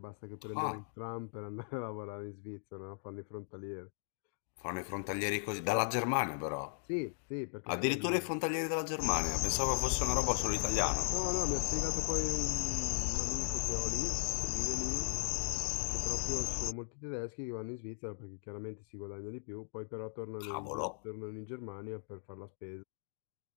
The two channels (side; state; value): right; silent; digital silence